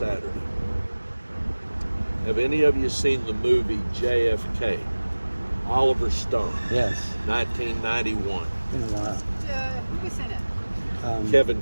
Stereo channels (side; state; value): both; inverted; correlation -1.00